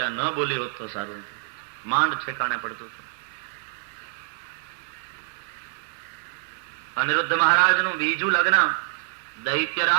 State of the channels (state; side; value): silent; left; 61 dB below the other